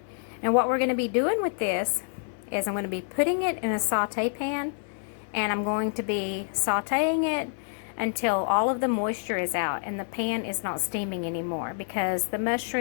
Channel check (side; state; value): right; silent; digital silence